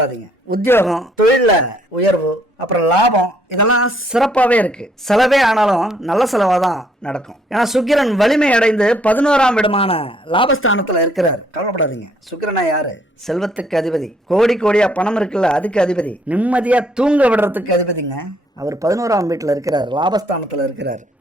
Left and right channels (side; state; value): both; normal; correlation 0.67